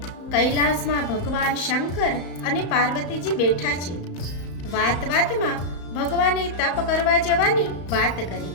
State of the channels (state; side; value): late; right; 34 ms